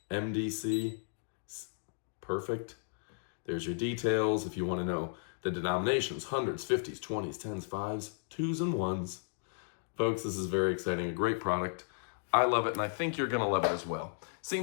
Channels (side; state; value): right; silent; digital silence